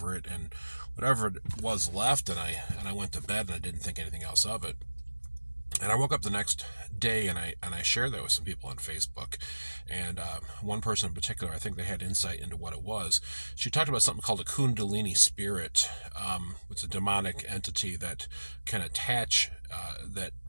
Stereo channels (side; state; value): both; inverted; correlation -1.00